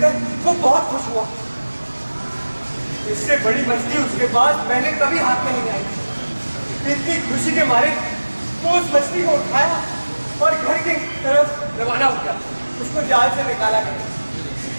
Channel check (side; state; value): both; inverted; correlation -1.00